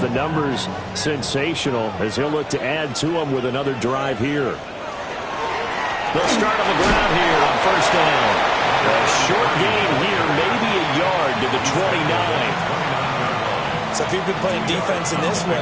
The numbers sensational as he'll look to add to them with another drive here. They'll start on the ground here on 1st down. A short gain here, maybe a yard to the 29. So if you've been playing defense in this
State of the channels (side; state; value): both; identical; correlation 1.00